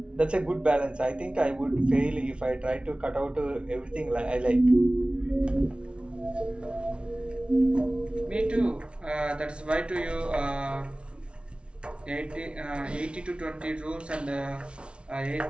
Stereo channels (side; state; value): left; late; 0.058 ms